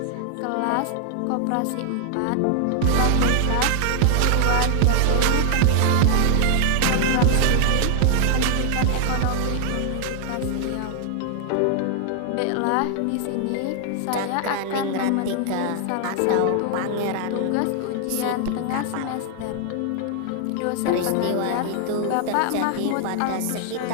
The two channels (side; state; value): both; different; correlation 0.00